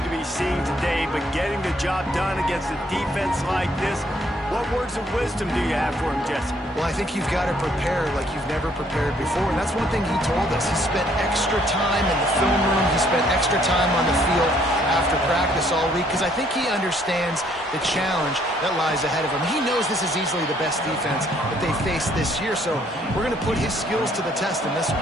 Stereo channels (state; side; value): normal; both; correlation 0.65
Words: to be seeing today, but getting the job done against a defense like this, what words of wisdom do you have for him, Jesse? Well, I think you've got to prepare like you've never prepared before, and that's one thing he told us. He spent extra time in the film room. He spent extra time on the field after practice all week because I think he understands the challenge that lies ahead of him. He knows this is easily the best defense that they face this year, so we're going to put his skills to the test in this